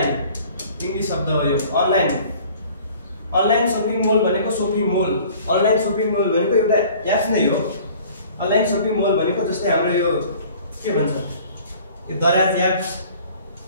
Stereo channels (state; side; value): inverted; both; correlation -0.50